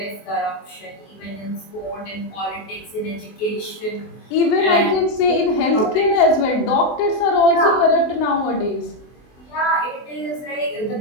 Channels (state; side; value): late; right; 24 ms